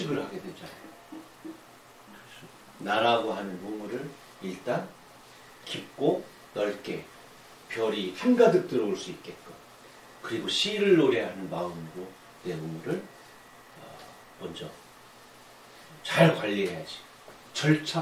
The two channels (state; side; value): identical; both; correlation 1.00